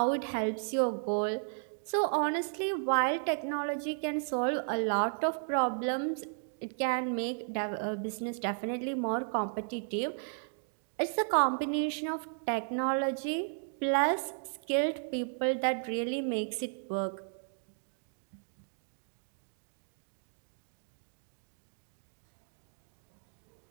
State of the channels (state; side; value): silent; left; digital silence